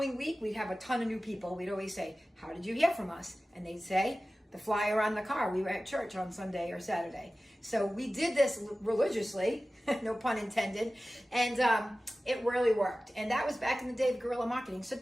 week, we'd have a ton of new people. We'd always say, how did you hear from us? And they'd say, the flyer on the car. We were at church on Sunday or Saturday. So we did this religiously, no pun intended, and it really worked. And that was back in the day of guerrilla marketing. So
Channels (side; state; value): both; normal; correlation 0.96